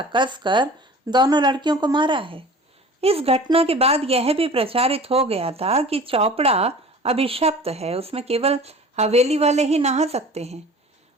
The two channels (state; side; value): normal; both; correlation 0.42